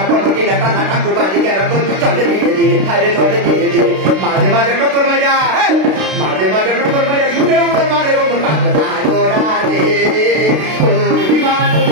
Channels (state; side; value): late; left; 32 ms